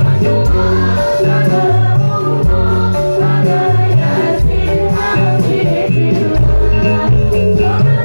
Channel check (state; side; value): inverted; both; correlation -1.00